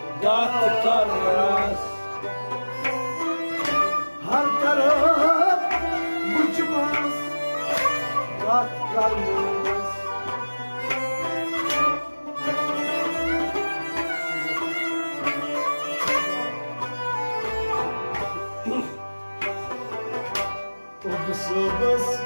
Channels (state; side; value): inverted; both; correlation -1.00